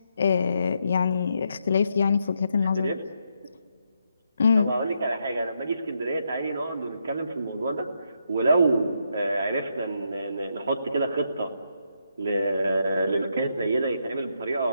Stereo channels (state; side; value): inverted; both; correlation -0.79